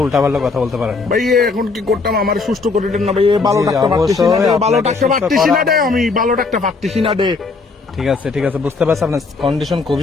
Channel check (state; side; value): quieter; right; 4.2 dB